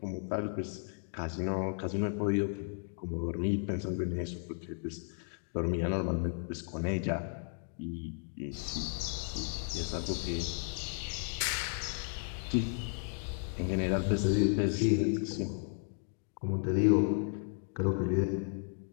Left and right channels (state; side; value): silent; right; 55 dB below the other